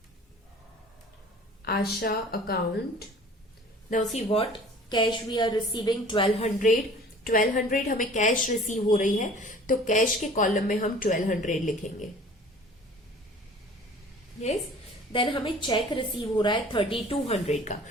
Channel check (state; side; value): normal; both; correlation 0.47